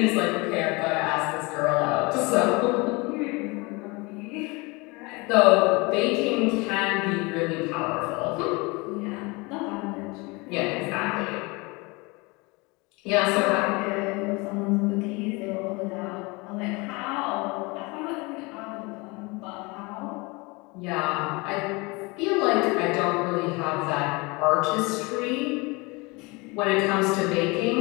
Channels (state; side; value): quieter; right; 26.2 dB